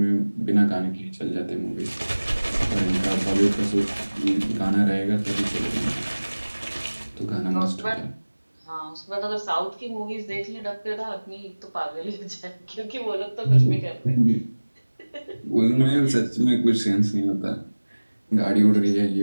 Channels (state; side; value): inverted; both; correlation -1.00